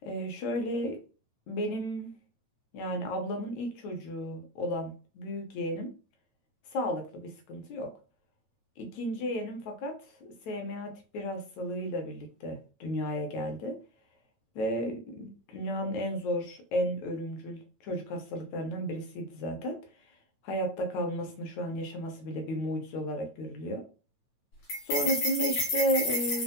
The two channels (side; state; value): right; late; 9.2 ms